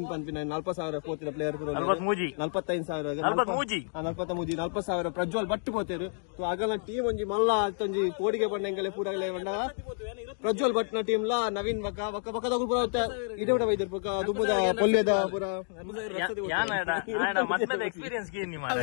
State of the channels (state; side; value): silent; right; 58 dB below the other